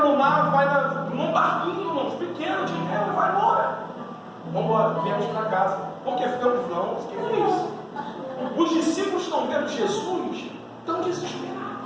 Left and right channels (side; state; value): both; identical; correlation 1.00